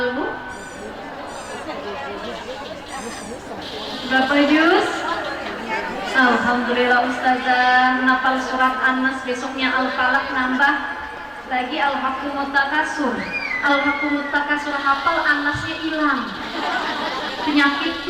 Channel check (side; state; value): both; identical; correlation 1.00